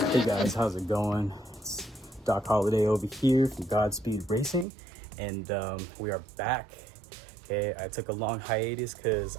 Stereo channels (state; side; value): drops out; left; at 4.7 s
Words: guys, how's it going? It's Doc Holiday over here from Godspeedracing, and we are back. Okay, I took a long hiatus because